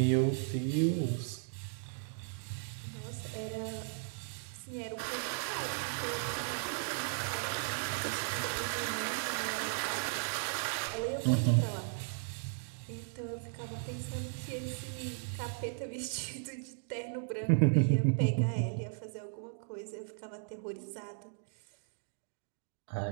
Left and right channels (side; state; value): left; silent; digital silence